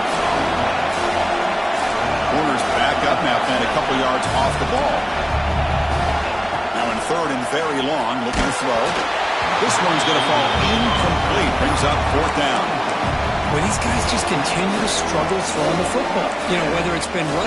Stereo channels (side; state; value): both; identical; correlation 1.00